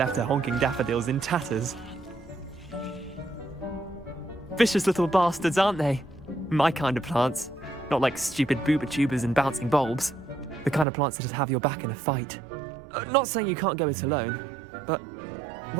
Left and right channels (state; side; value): drops out; left; at 10.9 s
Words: her honking daffodils in tatters. Vicious little bastards, aren't they? My kind of plants. Not like stupid booba tubers and bouncing bulbs. The kind of plants that just have your back in a fight. Not saying you can't go it alone, but...